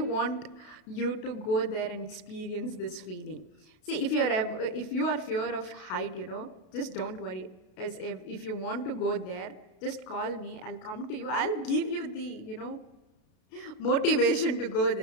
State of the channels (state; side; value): late; right; 33 ms